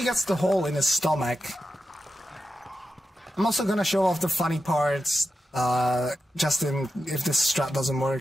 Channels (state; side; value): normal; both; correlation 0.89